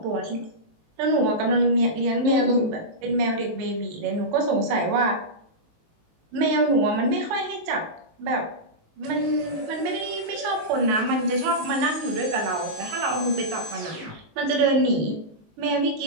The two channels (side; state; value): left; late; 19 ms